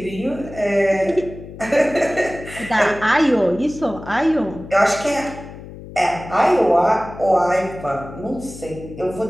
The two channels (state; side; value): noise; left; hum, 14 dB below the sound